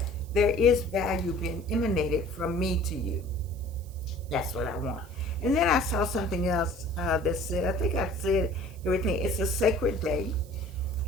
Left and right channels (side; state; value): right; noise; hiss, 25 dB below the sound